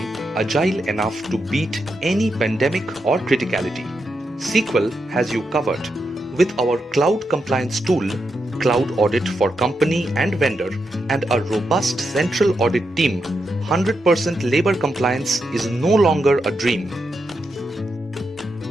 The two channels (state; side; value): normal; both; correlation 0.84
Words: agile enough to beat any pandemic or criticality. C-Quel has you covered. With our cloud compliance tool, Cloud Audit for company and vendor, and a robust central audit team, 100% labor compliance is no longer a dream.